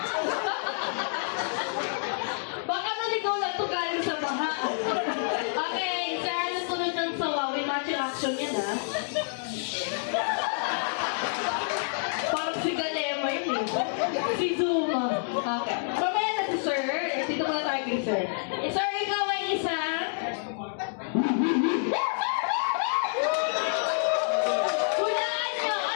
Baka naligaw lang ito galing sa baha. Okay, sir, ano sunod ng sawa? May matching action yan, ha? Parang si Galema yun, eh. Si Zuma. Okay. Mamaya na si sir. Dito muna tayo kay sir. Sir, ikaw ay isang... Hulaan nyo!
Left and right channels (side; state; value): right; silent; digital silence